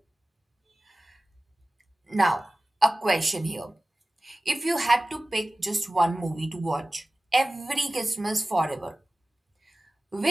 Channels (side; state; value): both; normal; correlation 0.97